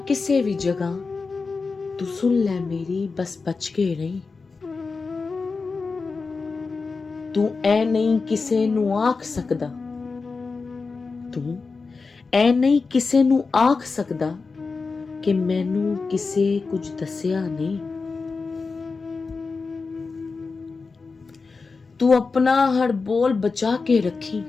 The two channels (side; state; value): right; quieter; 4.4 dB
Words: किसे भी जगह, तू सुन ले मेरी बस बच के रही। तू ऐ नहीं किसे नू आख सकदा, तू ऐ नहीं किसे नू आख सकदा कि मैनू किसे कुछ दसिया नहीं। तू अपना हर बोल बचा के रखी,